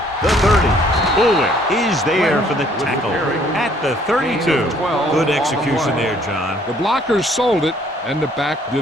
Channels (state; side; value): normal; both; correlation 0.62